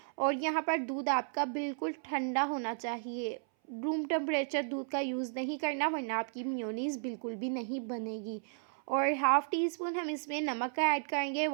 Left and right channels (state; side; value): silent; left; 55 dB below the other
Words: और यहाँ पर दूध आपका बिल्कुल ठंडा होना चाहिए। रूम टेम्परेचर दूध का यूज़ नहीं करना, वरना आपकी मेयोनीज़ बिल्कुल भी नहीं बनेगी। और हाफ़ टी स्पून हम इसमें नमक का ऐड करेंगे,